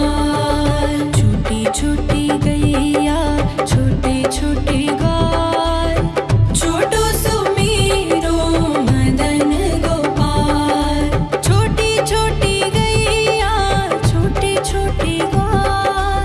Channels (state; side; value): identical; both; correlation 1.00